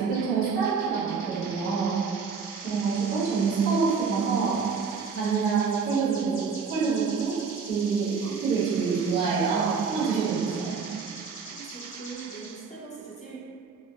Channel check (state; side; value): quieter; left; 5.3 dB